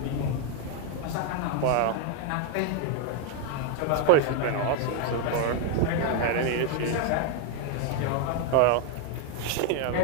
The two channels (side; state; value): both; different; correlation 0.01